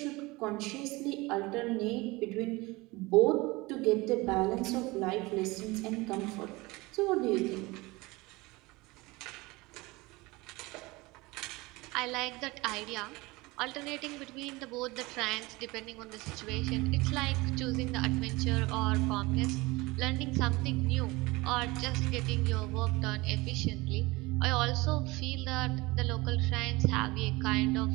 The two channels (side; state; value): left; quieter; 22.6 dB